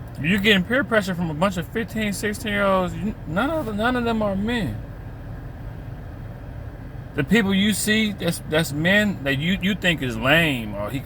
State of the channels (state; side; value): identical; both; correlation 1.00